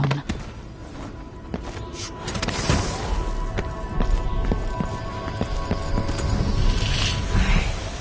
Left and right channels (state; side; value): identical; both; correlation 1.00